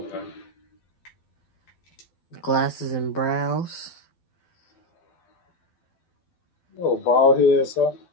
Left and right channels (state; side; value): late; right; 12 ms